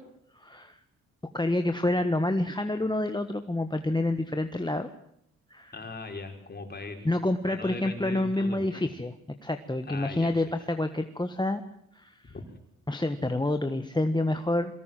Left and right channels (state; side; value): normal; both; correlation 0.83